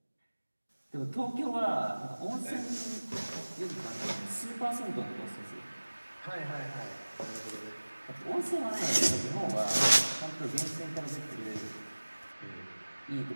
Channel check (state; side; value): inverted; both; correlation -1.00